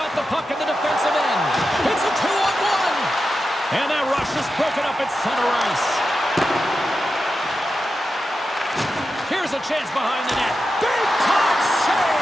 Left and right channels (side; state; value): both; normal; correlation 0.90